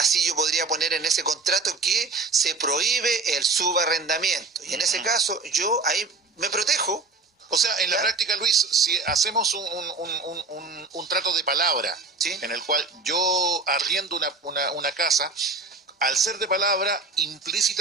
yo podría poner en ese contrato que se prohíbe el subarrendamiento. Y en ese caso yo ahí me protejo. O sea, en la práctica, Luis, si hacemos un trato de palabra, ¿sí?, en el cual yo arriendo una casa, al ser de palabra,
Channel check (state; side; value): quieter; left; 3.8 dB